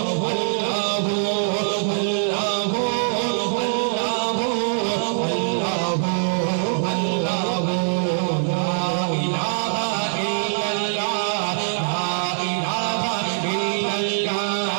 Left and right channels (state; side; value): silent; left; digital silence